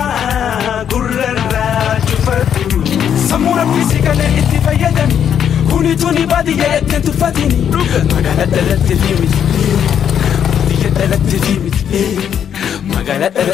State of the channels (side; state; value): right; quieter; 8.8 dB